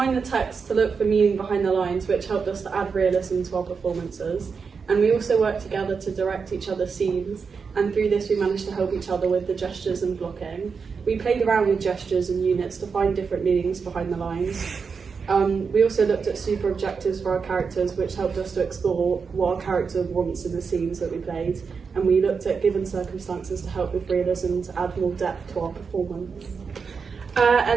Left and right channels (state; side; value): quieter; left; 5.5 dB